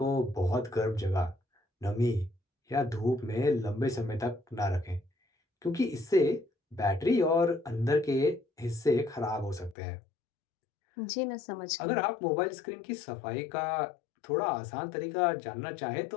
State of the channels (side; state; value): right; drops out; at 9.8 s